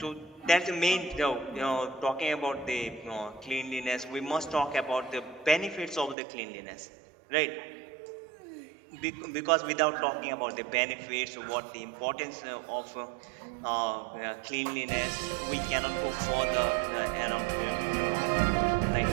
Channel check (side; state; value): left; drops out; at 6.2 s